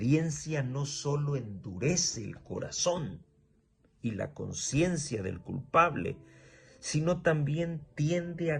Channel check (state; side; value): identical; both; correlation 1.00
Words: no solo endurece el corazón y la conciencia del culpable, sino también tiende